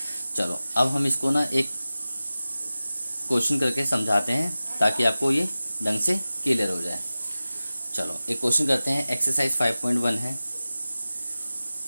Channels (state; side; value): inverted; both; correlation -0.96